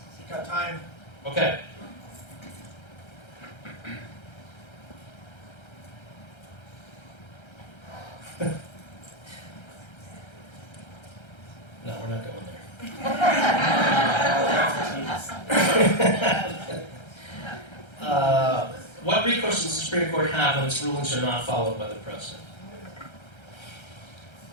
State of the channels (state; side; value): late; right; 1.3 ms